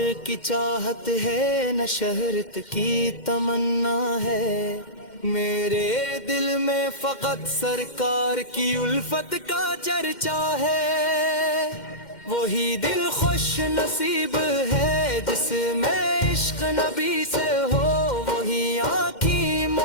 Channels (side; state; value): right; late; 2.1 ms